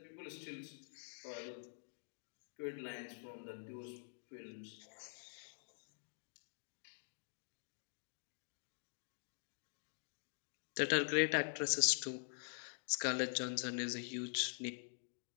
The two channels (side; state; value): right; silent; digital silence